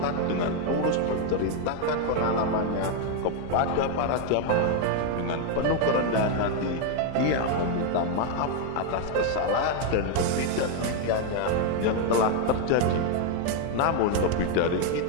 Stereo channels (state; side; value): different; both; correlation 0.01